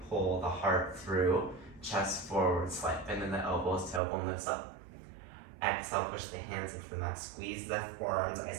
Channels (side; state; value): left; drops out; at 4.0 s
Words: pull the heart through. Chest forward, slight bend in the elbows, tailbone lifts up. Exhale, push the hands into the mat. Squeeze the forearms